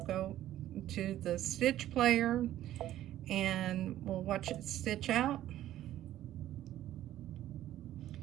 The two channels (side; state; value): left; quieter; 13.1 dB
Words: go to the stitch player and we'll watch it stitch out.